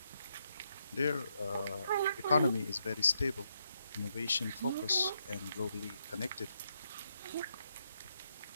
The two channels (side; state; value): both; inverted; correlation -0.80